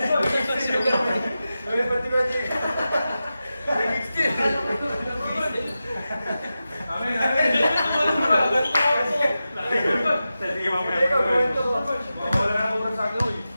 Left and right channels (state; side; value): inverted; both; correlation -0.92